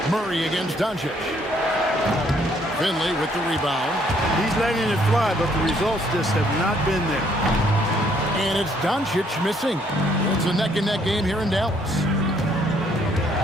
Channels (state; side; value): normal; both; correlation 0.67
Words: Murray against Doncic. Finley with the rebound. He's letting it fly, but the results just have not been there. And it's Doncic missing. It's a neck-and-neck game here in Dallas.